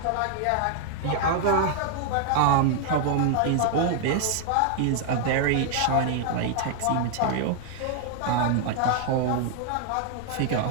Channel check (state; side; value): different; both; correlation 0.00